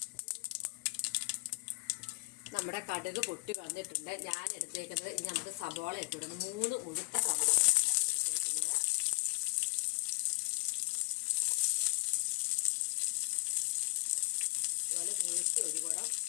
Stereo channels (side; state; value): right; quieter; 26.5 dB